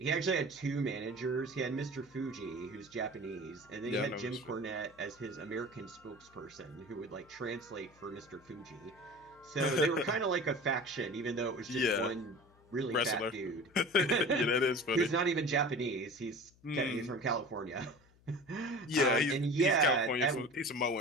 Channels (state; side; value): noise; left; hum, 29 dB below the sound